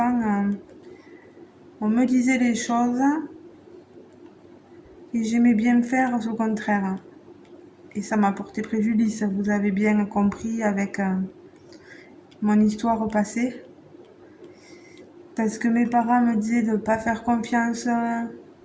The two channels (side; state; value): both; identical; correlation 1.00